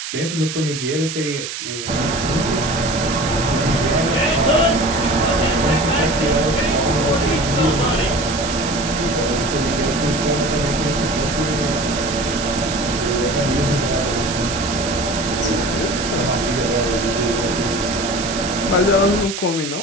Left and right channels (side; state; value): right; noise; hiss, 7 dB below the sound